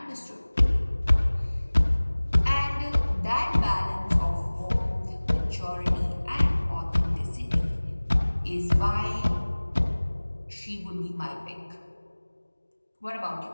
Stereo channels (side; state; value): both; inverted; correlation -1.00